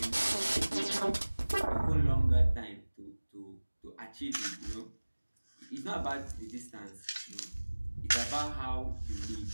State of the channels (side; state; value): both; inverted; correlation -1.00